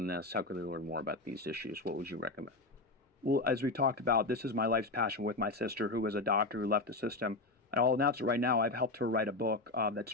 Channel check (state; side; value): quieter; right; 3.1 dB